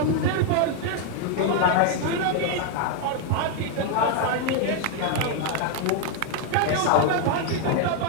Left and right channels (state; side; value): different; both; correlation 0.01